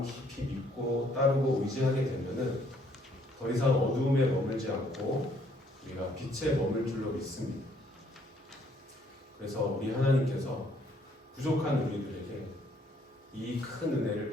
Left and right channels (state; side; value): normal; both; correlation 0.66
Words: 깊이 믿고 따르고 의지하게 되면은 더 이상 어두움에 머물지 않고 우리가 빛에 머물 줄로 믿습니다. 그래서 우리 하나님께서 부족한 우리들에게 이 큰